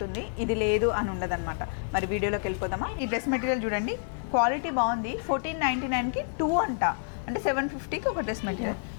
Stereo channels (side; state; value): right; silent; 59 dB below the other